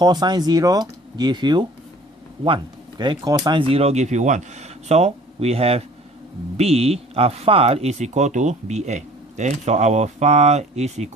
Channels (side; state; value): both; normal; correlation 0.50